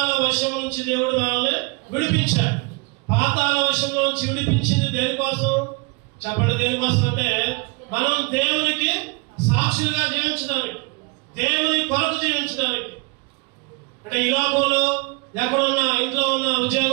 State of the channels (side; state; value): left; quieter; 29.6 dB